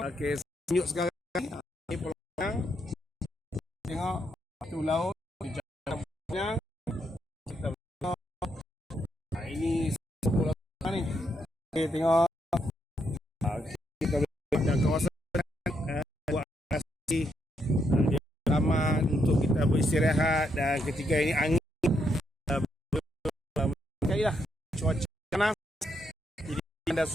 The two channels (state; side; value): normal; both; correlation 0.78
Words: tunjuk sekarang. Pulau Pinang, tengok batu laut, Pinang. Kita tengok ini Pulau Pinang ni. Okay, tengok kita ada kawasan buat asli taman untuk kita beristirahat, dan ketika ini angin sekali lah cuaca panas, jadi anda